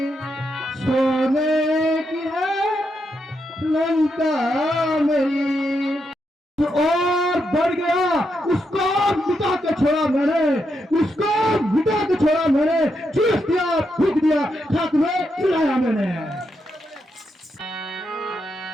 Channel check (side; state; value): both; normal; correlation 0.83